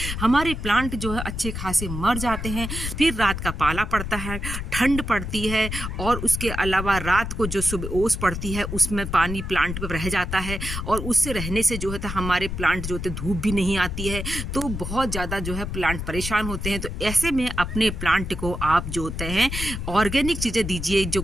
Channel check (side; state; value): left; noise; rumble, 5 dB below the sound